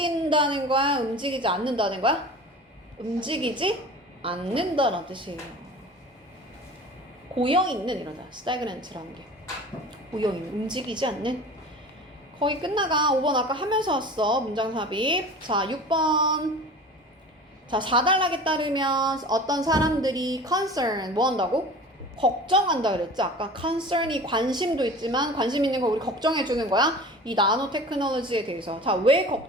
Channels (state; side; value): normal; both; correlation 0.38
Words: 거야? 움직이지 않는다는 거야? 움직이지 않는다란 뜻이에요. 고여있는 이러다. stagnant라는 게. 고여있는, 움직이지 않는. 거의 끝나가. 5번 아까 하면서 왔어. 문장 삽입. 자, 6번. 자, 4단락에 따르면 어떤 사람들이 concern 뭐 한다고? 걱정한다 그랬지. 아까 concern이 관심도 있지만 관심 있는 거 우리 걱정해 주는 거야. 이 나노 테크놀로지에 대해서. 자, 왜